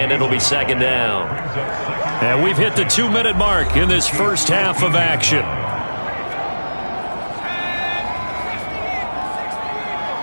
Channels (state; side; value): inverted; both; correlation -1.00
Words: and it'll be 2nd down. And we've hit the 2-minute mark in this first half of action.